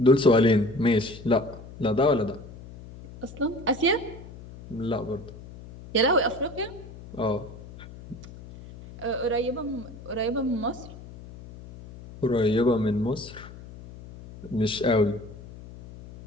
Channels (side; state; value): left; noise; hum, 16 dB below the sound